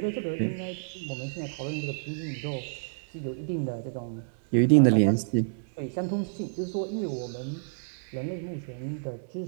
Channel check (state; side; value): silent; left; 58 dB below the other